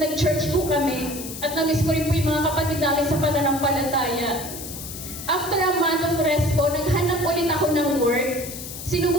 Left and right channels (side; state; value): left; noise; hiss, 10 dB below the sound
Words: po kami. At na-miss ko rin po yung mga kapatid namin sa pananampalataya. After a month of rest po, naghanap ulit ako ng work.